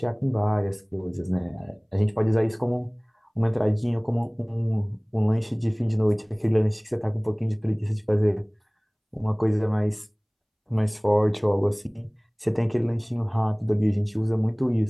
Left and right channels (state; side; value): identical; both; correlation 1.00